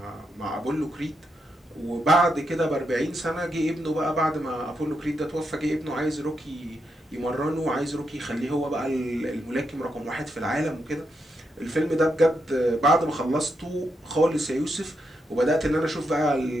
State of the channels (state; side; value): normal; both; correlation 0.82